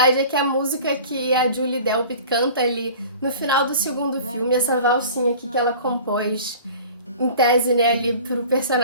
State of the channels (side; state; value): both; inverted; correlation -0.42